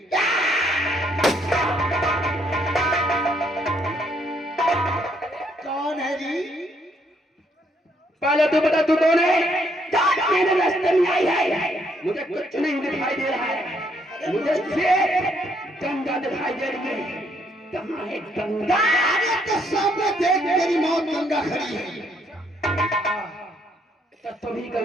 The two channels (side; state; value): both; normal; correlation 0.70